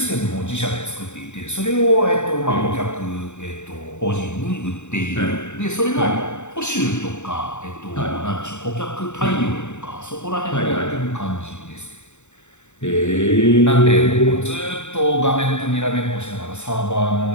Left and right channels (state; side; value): late; right; 0.84 ms